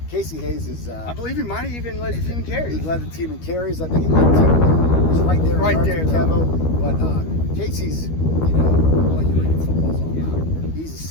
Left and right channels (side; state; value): right; late; 13 ms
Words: Casey Hayes is... I believe he might have even led the team in carries. He led the team in carries. I think he led the team. He was right there. Right there. Kevo. But Casey's, what you read in football is all about. He's a